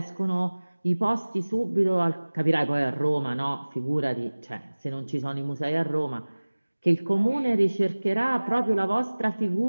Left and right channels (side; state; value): both; inverted; correlation -1.00